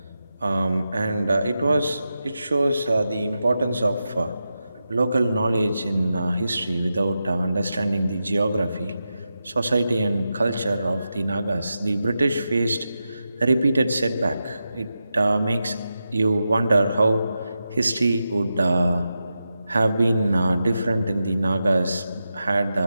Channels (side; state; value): both; inverted; correlation -0.90